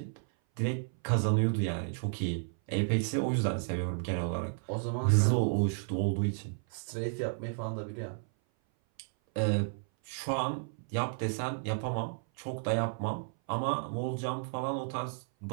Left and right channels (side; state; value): left; silent; 56 dB below the other